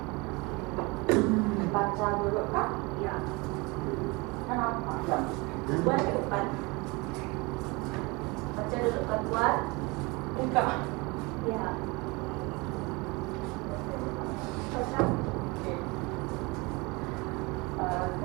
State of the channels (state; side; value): quieter; left; 26.1 dB